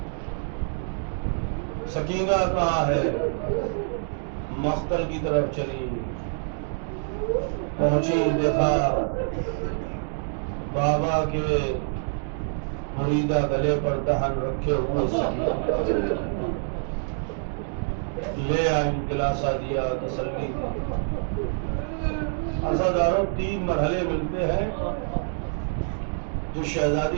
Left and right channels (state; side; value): silent; left; digital silence